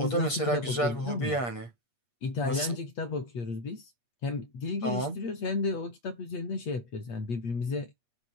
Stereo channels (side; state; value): right; late; 8.4 ms